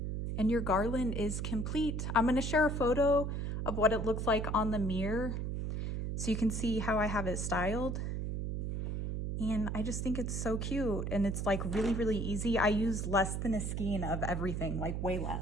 And your garland is complete. I'm going to share a photo of what it looks like on the mirror so you can see how I have it styled. And I just think it's so cute, and it's like really, really easy. I use less than a skein of everything, like way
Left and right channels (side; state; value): right; noise; hum, 2 dB below the sound